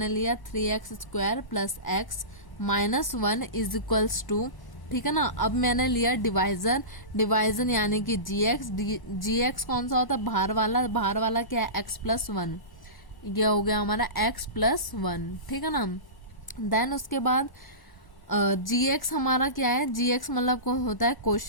लिया 3x² plus x minus 1 is equals to, ठीक है ना। अब मैंने लिया डिवाइजर यानी कि gx कौन सा होता है, बाहर वाला क्या है, x प्लस 1, ये हो गया हमारा x प्लस 1, ठीक है ना। देन उसके बाद gx हमारा क्या है, gx मतलब कौन होता है,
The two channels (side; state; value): right; late; 1.0 ms